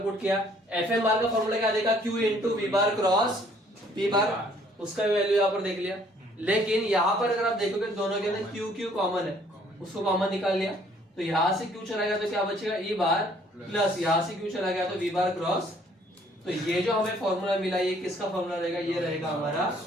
पुट किया। Fm बार का फॉर्मूला क्या देगा, Q into V bar cross P बार, उसका भी वैल्यू यहाँ पर देख लिया। लेकिन यहाँ पर अगर आप देखोगे दोनों के अंदर Q कॉमन है, उसको कॉमन निकाल लिया, तो यहाँ से Q चला गया तो क्या बचेगा, E बार प्लस यहाँ से Q चला गया तो V बार क्रॉस। तो ये जो हमें फॉर्मूला मिला, ये किसका फॉर्मूला रहेगा, ये रहेगा हमारा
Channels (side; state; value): both; normal; correlation 0.61